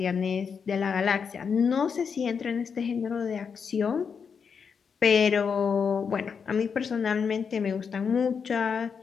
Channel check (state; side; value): quieter; right; 6.2 dB